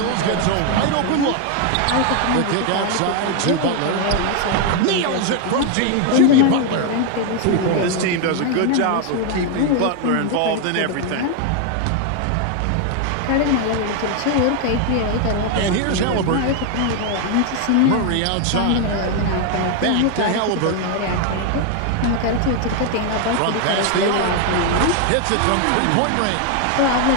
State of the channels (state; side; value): different; both; correlation 0.01